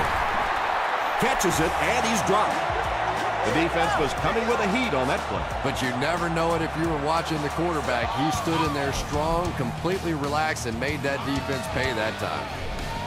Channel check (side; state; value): both; identical; correlation 1.00